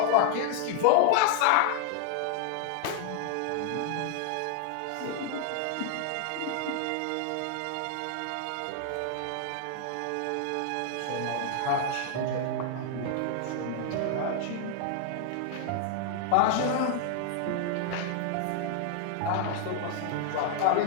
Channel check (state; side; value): different; both; correlation 0.00